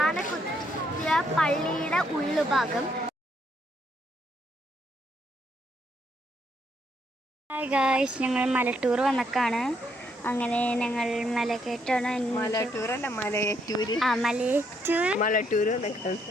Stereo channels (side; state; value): both; normal; correlation 0.73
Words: പള്ളിയുടെ ഉള്ളുഭാഗം. Hi guys, ഞങ്ങൾ മലട്ടൂർ വന്നക്കാണ്. അങ്ങനെ ഞങ്ങൾ മലക്കയറ്റാണ്.